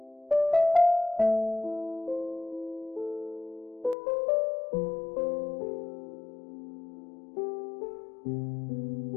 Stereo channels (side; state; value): right; drops out; at 4.0 s